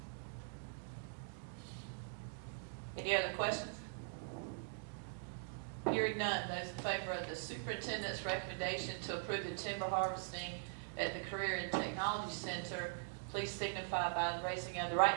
you. Any other questions? Hearing none, those in favor of the superintendent's recommendation to approve the timber harvesting at the Career and Technology Center, please signify by raising of the right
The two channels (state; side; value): silent; left; digital silence